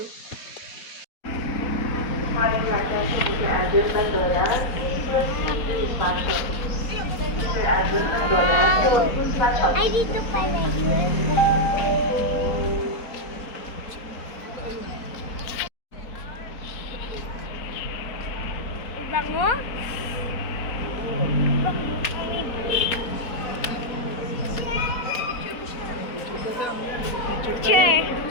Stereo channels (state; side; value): late; right; 4.2 ms